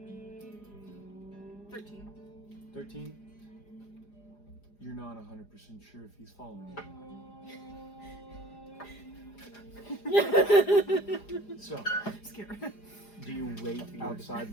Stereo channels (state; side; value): late; right; 4.9 ms